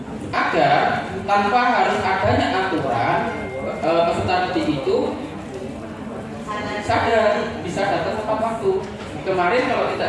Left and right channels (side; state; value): both; identical; correlation 1.00